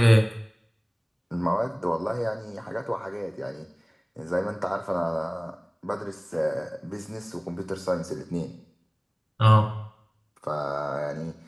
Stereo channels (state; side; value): identical; both; correlation 1.00